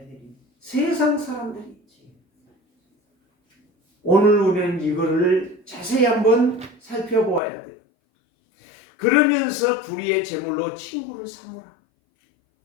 세상 사람들이. 오늘 우리는 이거를 자세히 한번 살펴보아야 돼요. 그러면서 불의의 제물로 친구를 삼으라.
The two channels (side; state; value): right; drops out; at 7.4 s